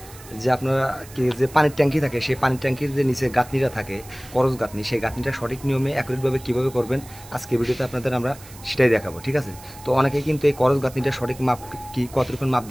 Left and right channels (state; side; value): noise; right; hiss, 19 dB below the sound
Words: যে আপনারা যে পানির ট্যাঙ্কি থাকে, সেই পানির ট্যাঙ্কির যে নিচে গাঁথনিটা থাকে, করজ গাঁথনি, সেই গাঁথনিটা সঠিক নিয়মে অ্যাকুরেটভাবে কীভাবে করবেন আজকের ভিডিওতে আপনাদের আমরা সেটাই দেখাবো, ঠিক আছে। তো অনেকেই কিন্তু এই করজ গাঁথনিটা সঠিক মাপ কি কতটুকুন মাপ